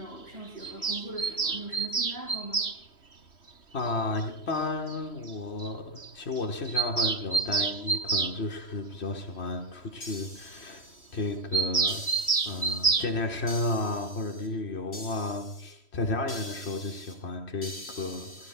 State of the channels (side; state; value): right; late; 3.1 ms